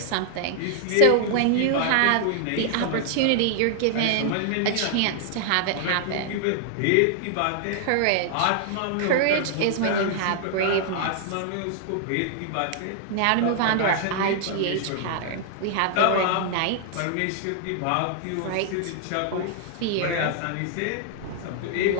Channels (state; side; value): different; both; correlation -0.01